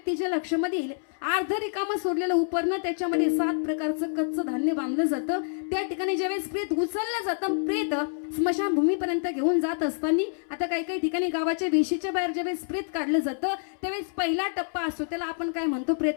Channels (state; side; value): silent; right; 60 dB below the other